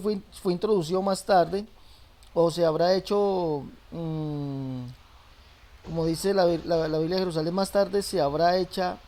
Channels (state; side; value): identical; both; correlation 1.00